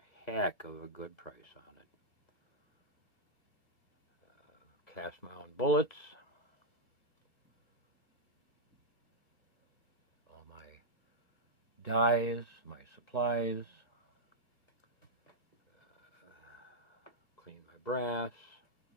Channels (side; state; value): right; late; 1.5 ms